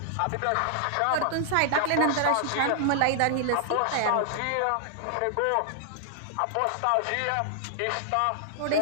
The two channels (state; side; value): different; both; correlation -0.01